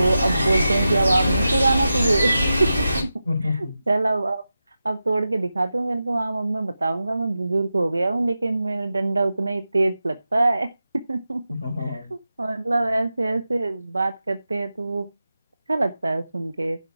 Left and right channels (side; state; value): both; inverted; correlation -0.92